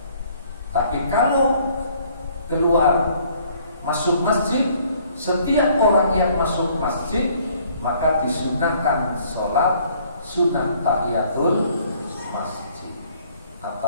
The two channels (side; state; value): both; inverted; correlation -0.60